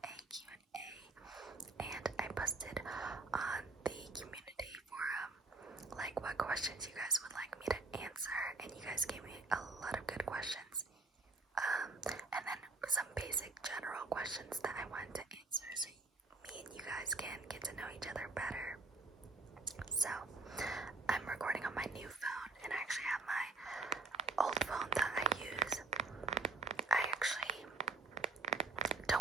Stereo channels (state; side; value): quieter; left; 3.6 dB